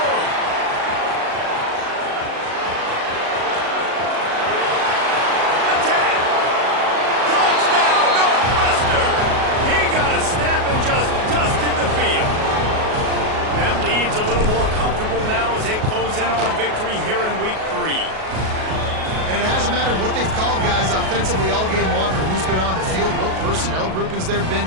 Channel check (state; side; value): late; left; 37 ms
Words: Attack! Touchdown, Northwestern! He got a step and just dusted the field. That lead's a little more comfortable now as they close in on a victory here in week 3. And it hasn't mattered what they've called, guys, offensively all game long, or who's been on the field, what personnel groupings there have been.